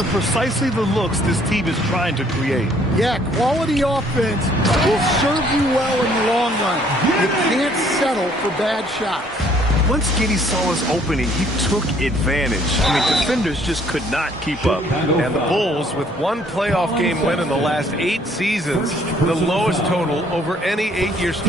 precisely the looks this team is trying to create. Yeah, quality offense will serve you well in the long run. You can't settle for bad shots. Once Giddey saw his opening, he took advantage. I mean, defenders just could not keep up. And the Bulls, with one playoff game win in the last 8 seasons, the lowest total over any 8-year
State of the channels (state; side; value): normal; both; correlation 0.62